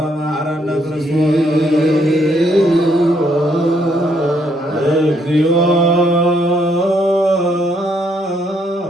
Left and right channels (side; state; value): both; normal; correlation 0.72